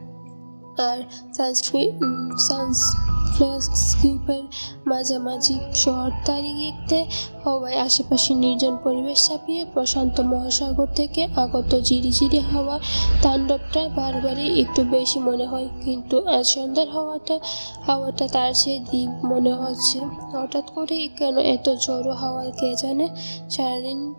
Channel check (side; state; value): both; inverted; correlation -1.00